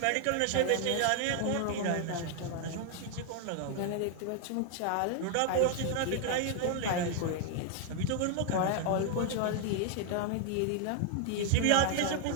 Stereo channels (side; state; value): both; different; correlation 0.00